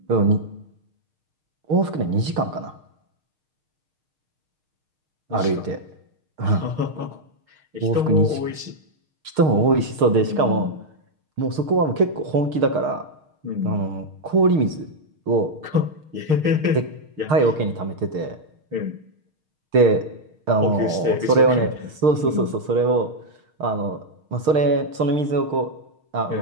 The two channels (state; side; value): late; left; 6.5 ms